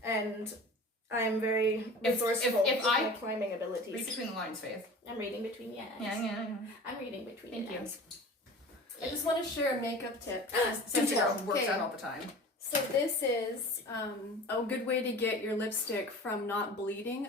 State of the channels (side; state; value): both; normal; correlation 0.39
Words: and I'm very resourceful with my climbing abilities. Read between the lines, Faith. I'm reading between the lines. Yeah. I'm reading between the lines. I just want to share a makeup tip. Cynthia works out all the time. So this is a good way to get your lipstick from not bleeding